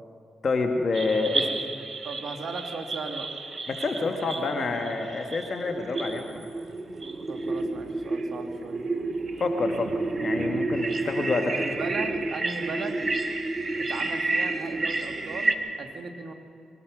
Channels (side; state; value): both; normal; correlation 0.86